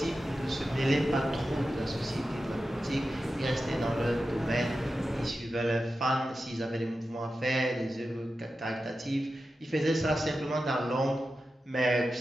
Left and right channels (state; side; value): normal; both; correlation 0.92